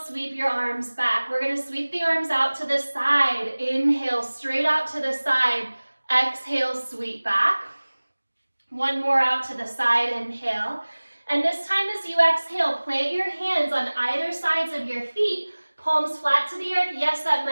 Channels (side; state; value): both; inverted; correlation -1.00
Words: your arms back. We're going to sweep the arms out to the side. Inhale, straight out to the side. Exhale, sweep back. One more out to the side, inhale. And this time as you exhale, plant your hands on either sides of your feet. Palms flat to the earth. Yes, that